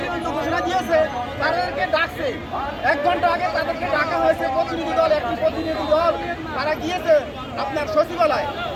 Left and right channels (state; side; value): identical; both; correlation 1.00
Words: ঘোষণা দিয়েছে, তাদেরকে ডাকছে 1 ঘন্টা আগে তাদেরকে ডাকা হয়েছে প্রতিনিধি দল, একটি প্রতিনিধি দল তারা গিয়েছে আপনার সচিবালয়।